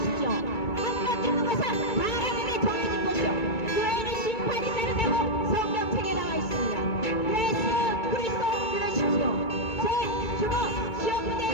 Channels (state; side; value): late; right; 2.2 ms